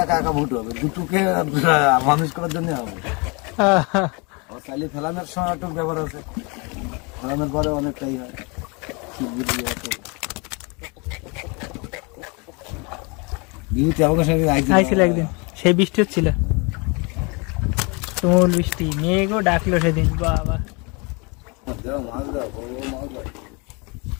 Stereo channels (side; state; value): right; quieter; 30.3 dB